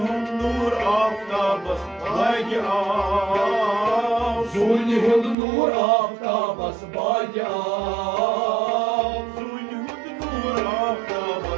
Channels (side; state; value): left; drops out; at 5.4 s